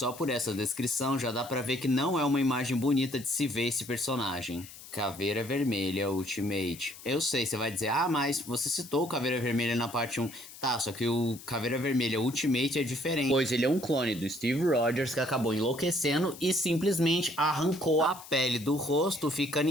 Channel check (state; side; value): noise; left; hiss, 17 dB below the sound